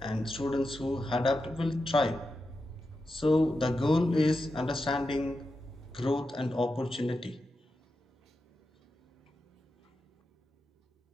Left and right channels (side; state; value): both; normal; correlation 0.89